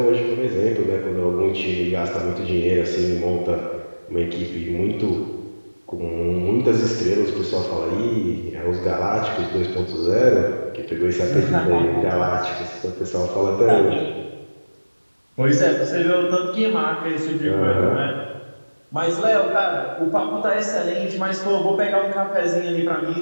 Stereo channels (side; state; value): both; inverted; correlation -1.00